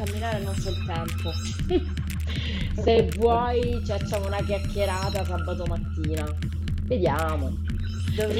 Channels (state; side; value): identical; both; correlation 1.00